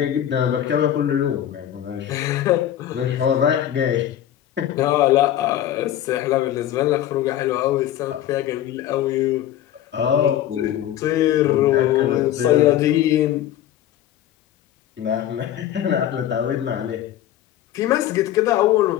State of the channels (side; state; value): right; quieter; 11.7 dB